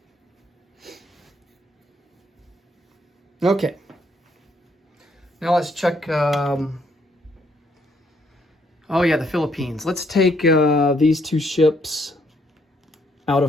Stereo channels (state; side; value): normal; both; correlation 0.70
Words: Okay, now let's check, oh yeah, the Philippines. Let's take these two ships out